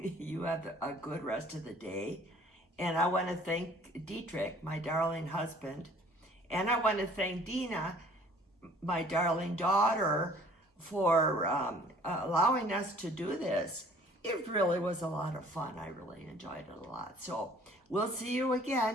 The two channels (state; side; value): normal; both; correlation 0.54